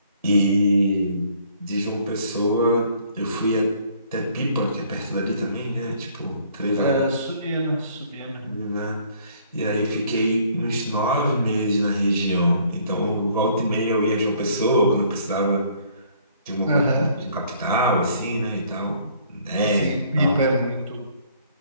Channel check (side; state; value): both; inverted; correlation -0.61